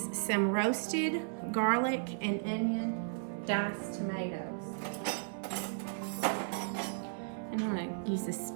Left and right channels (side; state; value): left; silent; 54 dB below the other